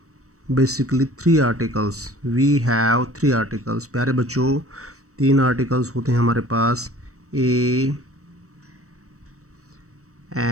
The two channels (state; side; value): late; left; 0.65 ms